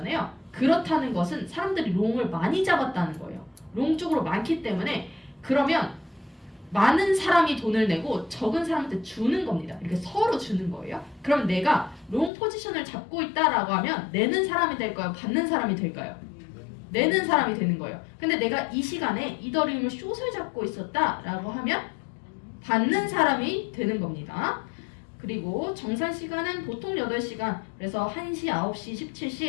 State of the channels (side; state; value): right; drops out; at 12.3 s